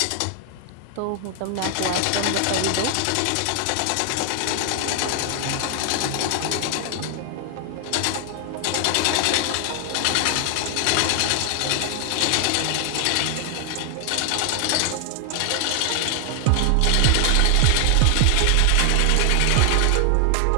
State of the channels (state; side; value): different; both; correlation 0.00